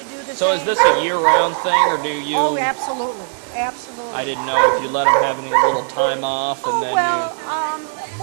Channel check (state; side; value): silent; left; 63 dB below the other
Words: do the same. So is this a year-round thing, or do you? Oh, absolutely, absolutely. I didn't know if you let him have any little time off, and then